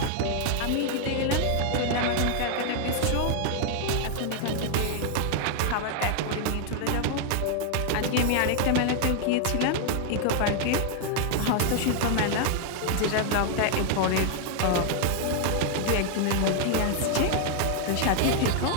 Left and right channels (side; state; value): both; different; correlation 0.00